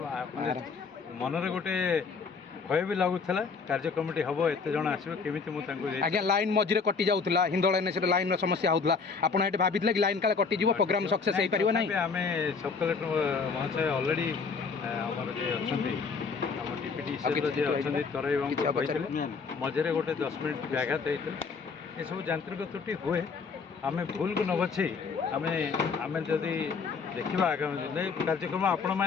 ମନରେ ଗୋଟେ ଭୟ ବି ଲାଗୁଥିଲା କାର୍ଯ୍ୟକ୍ରମଟି ହେବ ଏତେ ଜଣ ଆସିବ କେମିତି ମୁଁ ତାଙ୍କୁ ଆଜ୍ଞା ଲାଇନ୍ ମଝିରେ କଟି ଯାଉଥିଲା ହିନ୍ଦୋଳ ଏନ୍ଏସିରେ ଲାଇନ୍ର ସମସ୍ୟା ହେଉଥିଲା ଆପଣ ଏଠି ଭାବିଥିଲେ କି ଲାଇନ୍ କାଳେ କଟିଯିବ ପ୍ରୋଗ୍ରାମ ସକ୍ସେସ୍ ହେଇପାରିବ ନାହିଁ? ଆମେ ସବ୍ କଲେକ୍ଟର ମହାଶୟ ଅଲରେଡ଼ି ଆମର ଯିଏ ଅଛନ୍ତି ଆମ ଡିପ୍ୟୁଟି ଯିଏ ଅଛନ୍ତି ତରାଇ ବାବୁଙ୍କୁ କହିଥିଲେ ମଝିରେ ଗୋଟେ 10 ମିନିଟ୍ ବ୍ୟାଘାତ ହେଇଥିଲା। ଏସବୁ ଯାନ୍ତ୍ରିକ ତ୍ରୁଟି ହୁଏ ଆମେ ଭୁଲକୁ ନ ବଛେଇ ଆମେ ଯଦି ଦେଖିବା ଆଗାମୀ ଦିନରେ କାର୍ଯ୍ୟକ୍ରମ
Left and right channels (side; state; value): right; quieter; 5.1 dB